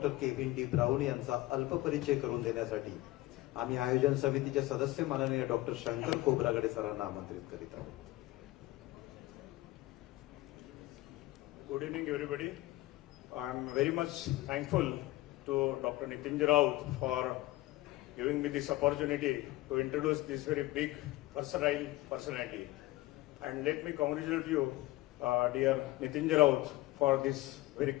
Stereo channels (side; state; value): right; quieter; 18.3 dB